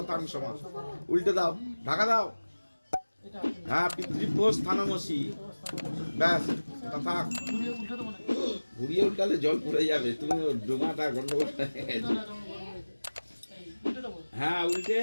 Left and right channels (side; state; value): both; inverted; correlation -1.00